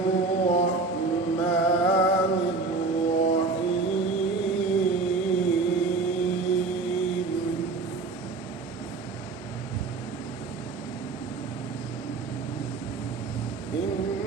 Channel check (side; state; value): left; quieter; 3.9 dB